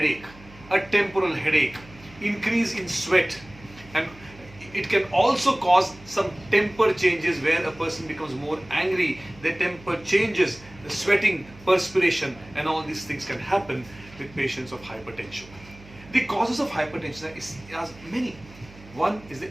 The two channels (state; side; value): noise; right; hum, 21 dB below the sound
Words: a temporal headache, increase in sweat, and it can also cause some temper changes where a person becomes more angry, their temper changes, the sweating, perspiration, and all these things can happen with patients of hypertension. The causes of hypertension are many. One is